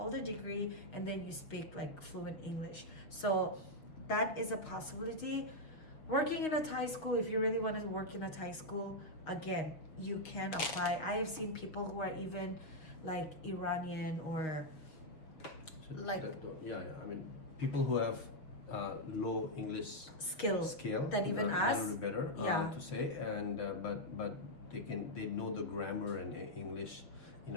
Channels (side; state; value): right; late; 6.3 ms